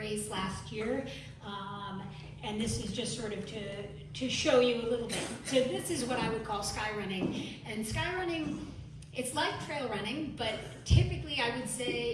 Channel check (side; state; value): both; identical; correlation 1.00